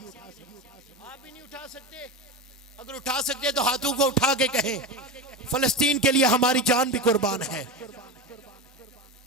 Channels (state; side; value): normal; both; correlation 0.20